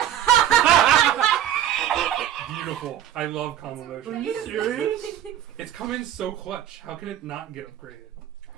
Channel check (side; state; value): left; quieter; 11.1 dB